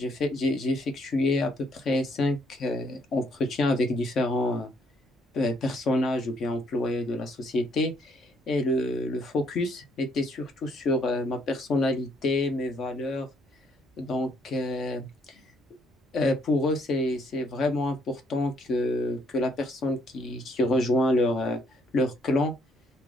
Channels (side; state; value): both; normal; correlation 0.68